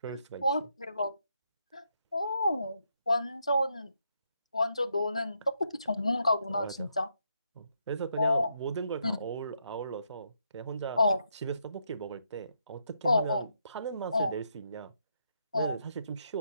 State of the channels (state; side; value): inverted; both; correlation -0.78